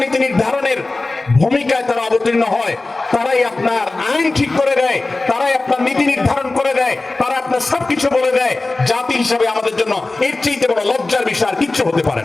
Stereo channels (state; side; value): quieter; right; 3.2 dB